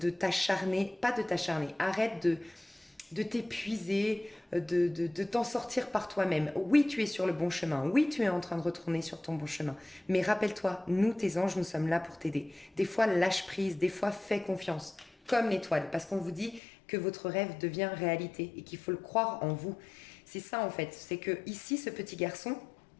t'acharner, pas de t'acharner, arrête de t'épuiser, de t'en sortir par toi-même. Oui, tu es sur le bon chemin. Oui, tu es en train de retourner sur ton bon chemin. Mais rappelle-toi, nous, tes anges, nous sommes là pour t'aider. Des fois, lâche prise. Des fois, fais confiance. comme l'étoile, parce qu'on vous dit que votre rêve devient réalité et qu'il faut le croire en vous. C'est ça en fait, c'est que ici, ce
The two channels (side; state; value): right; drops out; at 16.6 s